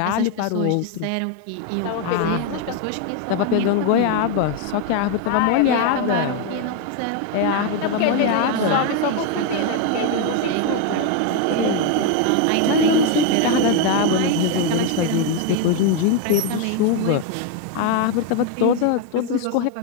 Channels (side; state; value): both; different; correlation 0.01